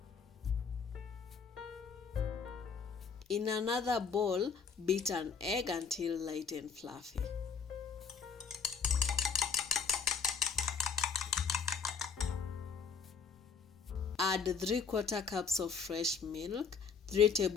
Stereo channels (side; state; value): right; quieter; 5.8 dB